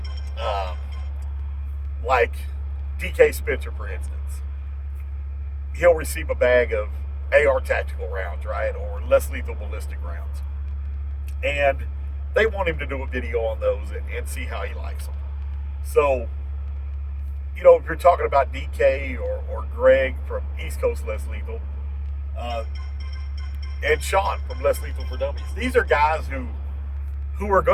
Like DK Spencer, for instance. He'll receive a bag of AR tactical rounds, right? Or less lethal ballistic rounds. And they want him to do a video on those and see how he likes them. So, if you're talking about DK or Greg from East Coast Less Lethal, and Sean from Less Lethal for Dummies, these are guys who are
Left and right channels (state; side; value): identical; both; correlation 1.00